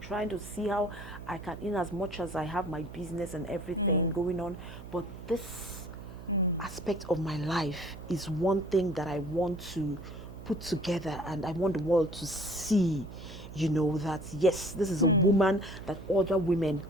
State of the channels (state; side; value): noise; right; hum, 13 dB below the sound